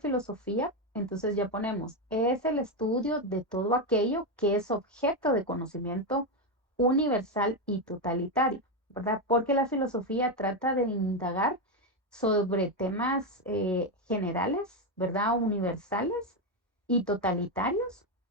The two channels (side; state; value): both; normal; correlation 0.08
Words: entonces ya ponemos, es el estudio de todo aquello que es objeto de conocimiento universal y totalitario, ¿verdad? Porque la filosofía trata de indagar sobre temas generales, ¿verdad? Universales y totalitarios,